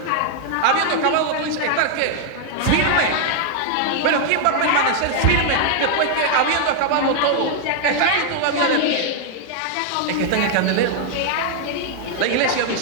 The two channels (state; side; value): different; both; correlation -0.01